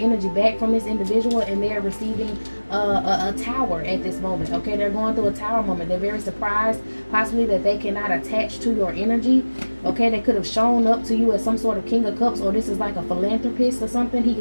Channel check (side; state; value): both; inverted; correlation -1.00